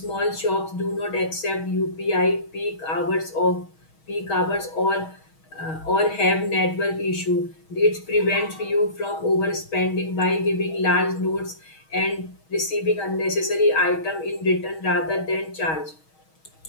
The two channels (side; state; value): right; late; 6.3 ms